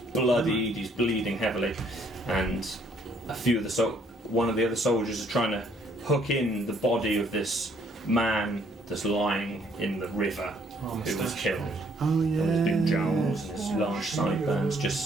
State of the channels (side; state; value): both; normal; correlation 0.65